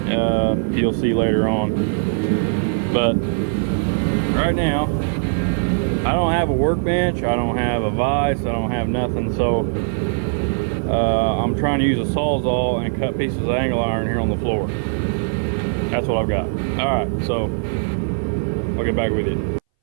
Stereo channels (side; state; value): left; silent; 62 dB below the other